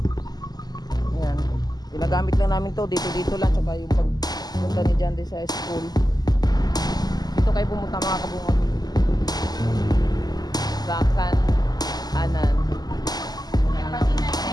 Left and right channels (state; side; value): late; right; 0.20 ms